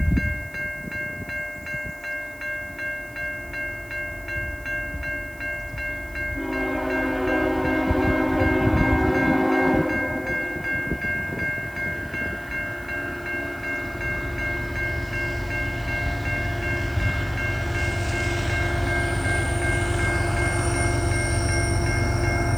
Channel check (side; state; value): right; noise; hiss, 24 dB below the sound